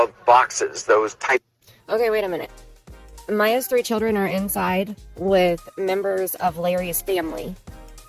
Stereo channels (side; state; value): both; identical; correlation 1.00